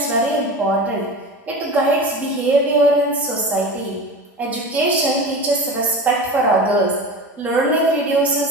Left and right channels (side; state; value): both; normal; correlation 0.30